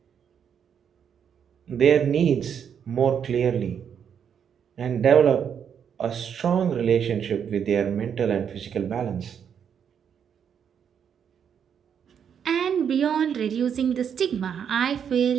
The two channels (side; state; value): left; quieter; 7.9 dB